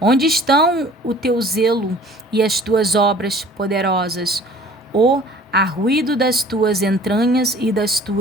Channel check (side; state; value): both; normal; correlation 0.49